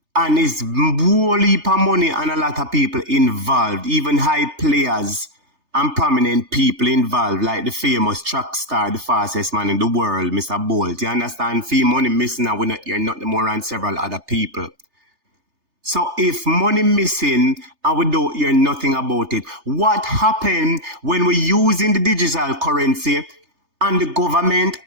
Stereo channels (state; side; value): late; left; 3.3 ms